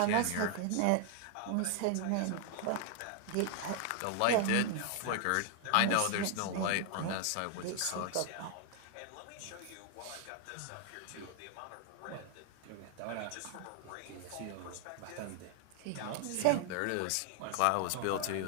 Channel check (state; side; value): different; both; correlation 0.00